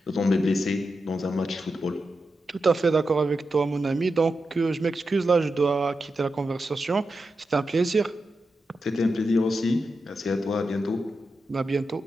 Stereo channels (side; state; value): both; normal; correlation 0.89